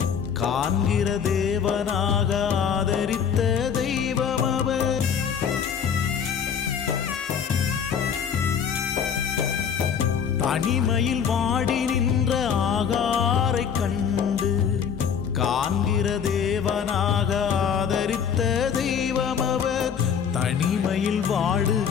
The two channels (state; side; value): quieter; right; 7.4 dB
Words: காண்கிற தேவனாக ஆதரித்த தெய்வம் அவர். தனிமையில் வாடி நின்ற ஆகாரை கண்டு காண்கிற தேவனாக ஆதரித்த தெய்வம் அவர். தனிமையில்